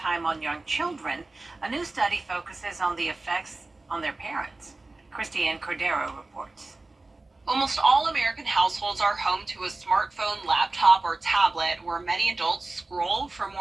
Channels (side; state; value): left; quieter; 3.2 dB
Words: on young children, a new study focuses on the effects on their parents. Christiane Cordero reports. Almost all American households are home to a smartphone, laptop, or tablet where many adults scroll for